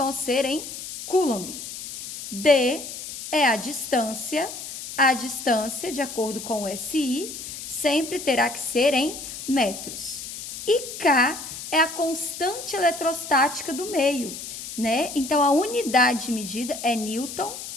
ser em Coulomb. D é a distância, de acordo com o SI, sempre terá que ser em metros. E K é a constante eletrostática do meio, Então, a unidade de medida é Newton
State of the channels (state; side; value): noise; left; hiss, 9 dB below the sound